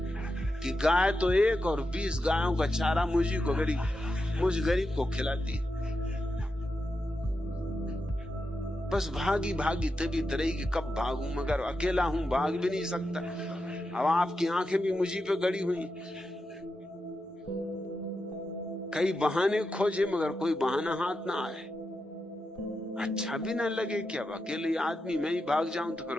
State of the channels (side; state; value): both; normal; correlation 0.88